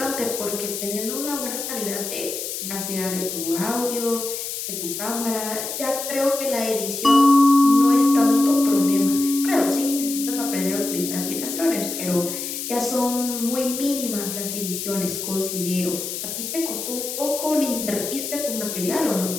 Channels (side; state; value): left; noise; hiss, 5 dB below the sound